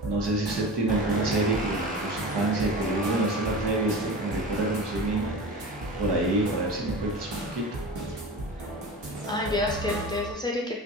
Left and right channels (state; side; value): normal; both; correlation 0.32